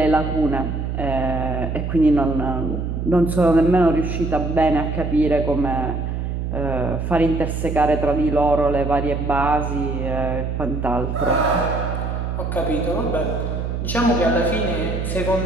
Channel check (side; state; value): right; noise; hum, 3 dB below the sound